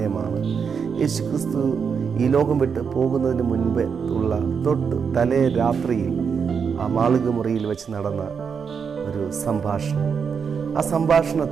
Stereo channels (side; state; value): left; quieter; 6.3 dB